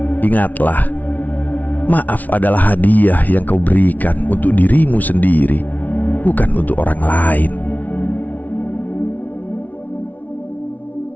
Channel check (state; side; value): late; right; 0.076 ms